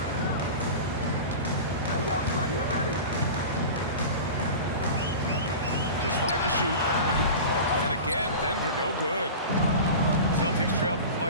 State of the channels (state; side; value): inverted; both; correlation -0.32